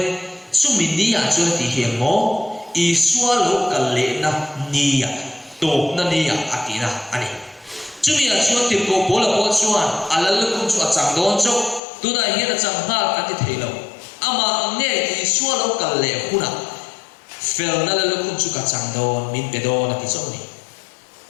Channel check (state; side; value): drops out; right; at 11.8 s